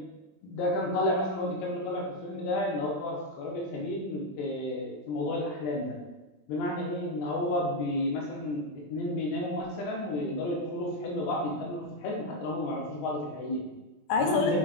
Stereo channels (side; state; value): right; late; 20 ms